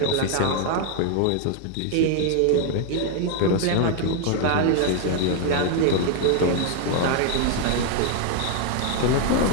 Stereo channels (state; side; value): different; both; correlation 0.00